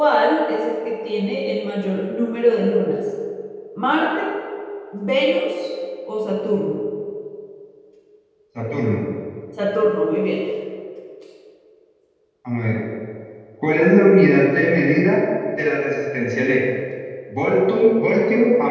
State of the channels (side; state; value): both; identical; correlation 1.00